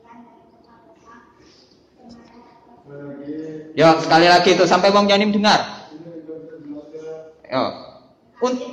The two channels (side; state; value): both; identical; correlation 1.00